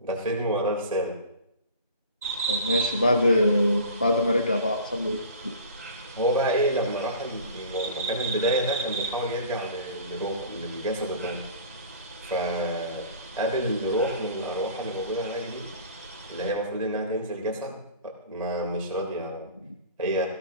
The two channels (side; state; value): both; inverted; correlation -0.43